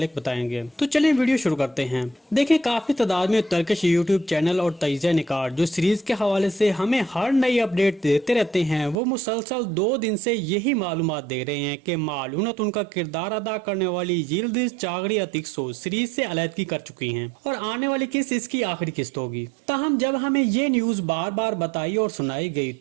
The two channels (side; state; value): left; drops out; at 9.0 s